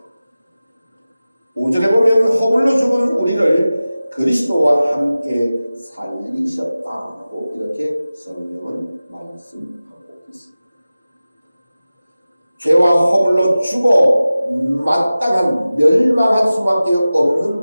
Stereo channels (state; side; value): inverted; both; correlation -0.96